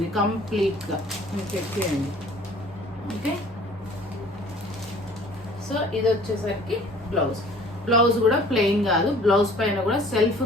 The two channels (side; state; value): both; normal; correlation 0.51